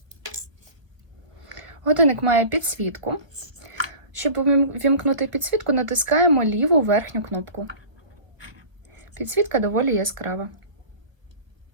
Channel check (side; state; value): left; late; 1.4 ms